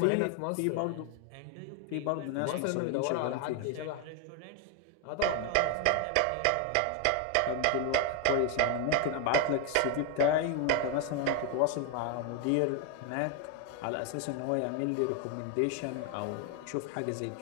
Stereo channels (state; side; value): different; both; correlation 0.01